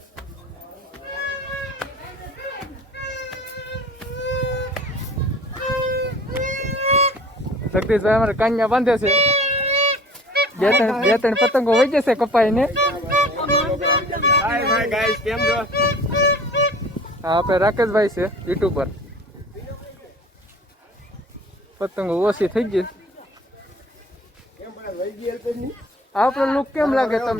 જગદીશભાઈ અમારે કાન્યા બાંધે છે. બે ત્રણ પતંગો વહી જશે કપાઈ ને. હા, આપણે રાકેશભાઈ છે યુટ્યુબર. પતંગો ઓછી થઈ ગઈ. આપણો લુક કેમ લાગે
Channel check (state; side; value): normal; both; correlation 0.46